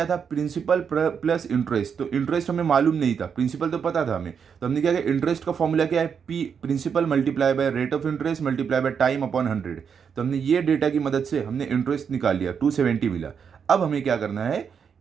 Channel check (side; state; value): left; quieter; 6.9 dB